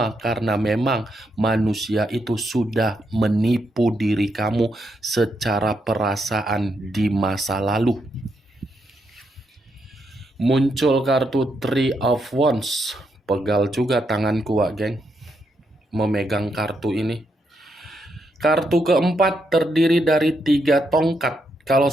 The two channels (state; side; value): normal; both; correlation 0.80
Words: karena memang manusia itu sudah menipu diri kamu secara perasaan di masa lalu. Muncul kartu Three of Wands. Pegal juga tanganku, wak geng, memegang kartu ini. Kartu keempat terdiri dari 3 tongkat. Kalau